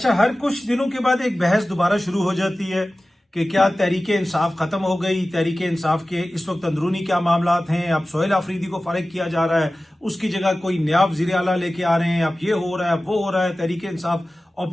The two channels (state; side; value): normal; both; correlation 0.96